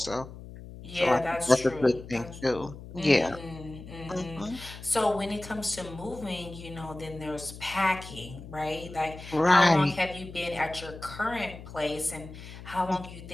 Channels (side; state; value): left; noise; hum, 14 dB below the sound